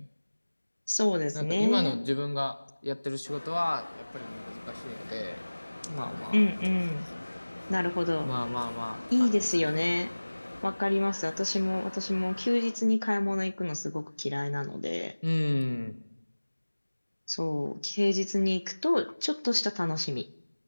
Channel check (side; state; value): both; inverted; correlation -1.00